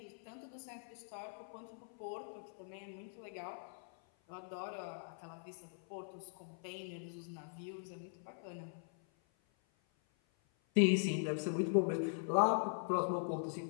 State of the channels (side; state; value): right; silent; 50 dB below the other